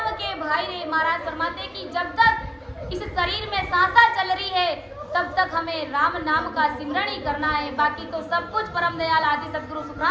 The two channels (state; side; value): identical; both; correlation 1.00